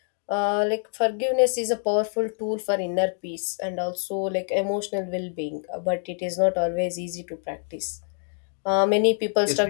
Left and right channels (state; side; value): silent; right; digital silence